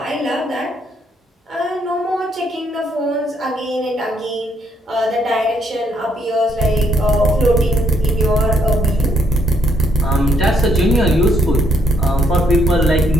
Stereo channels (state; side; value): normal; both; correlation 0.73